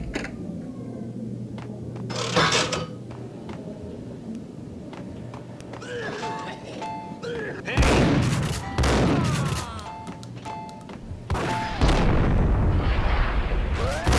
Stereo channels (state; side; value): identical; both; correlation 1.00